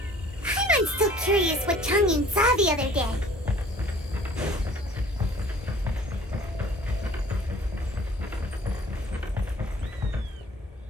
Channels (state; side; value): normal; both; correlation 0.51